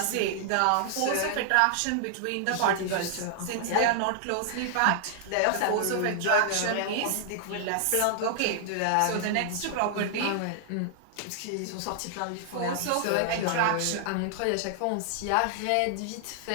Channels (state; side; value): different; both; correlation -0.01